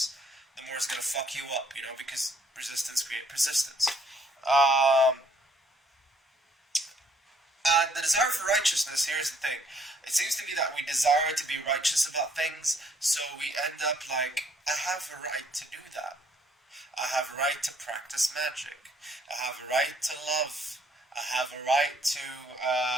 the more it's gonna fuck you up, because resistance creates persistence. Um, and the desire for righteousness, here's the thing. It seems to me that we desire to be righteous about things, so we end up like, I have a right to do that. I have a right to practice magic. I have a right to love. I have a right to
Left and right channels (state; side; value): normal; both; correlation 0.65